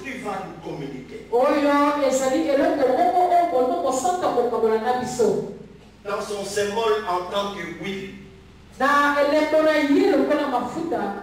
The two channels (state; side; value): identical; both; correlation 1.00